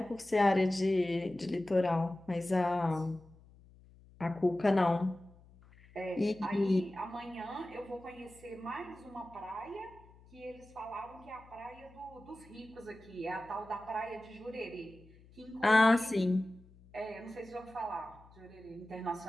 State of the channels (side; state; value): left; noise; hum, 24 dB below the sound